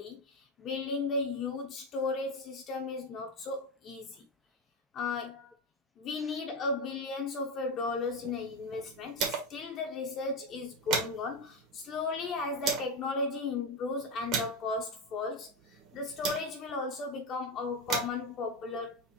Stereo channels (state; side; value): normal; both; correlation 0.14